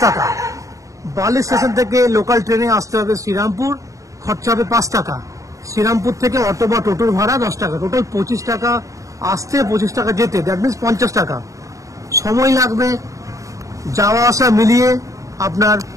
টাকা। বালি স্টেশন থেকে লোকাল ট্রেনে আসতে হবে শ্রীরামপুর, খরচা হবে 5 টাকা। শ্রীরামপুর থেকে অটো বা টোটোর ভাড়া 10 টাকা, টোটাল 25 টাকা আসতে, 25 টাকা যেতে, দ্যাট মিনস 50 টাকা। সময় লাগবে যাওয়া আসা মিলিয়ে আপনার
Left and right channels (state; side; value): late; left; 0.16 ms